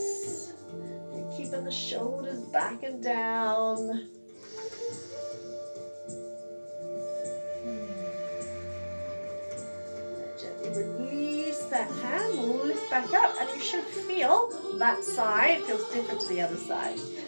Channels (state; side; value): inverted; both; correlation -1.00